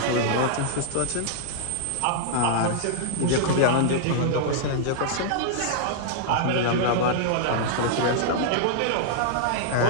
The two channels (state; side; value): different; both; correlation -0.01